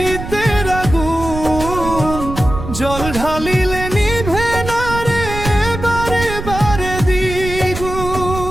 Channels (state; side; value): noise; right; rumble, 8 dB below the sound